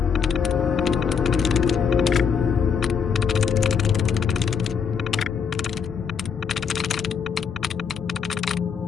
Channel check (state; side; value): quieter; right; 6.7 dB